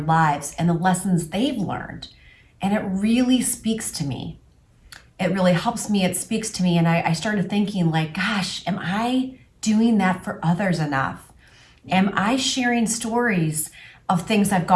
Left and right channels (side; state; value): both; identical; correlation 1.00